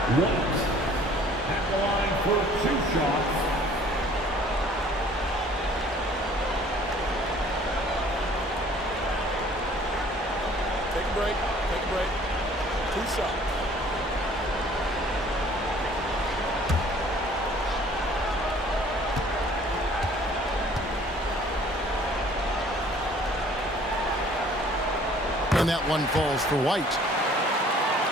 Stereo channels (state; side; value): normal; both; correlation 0.54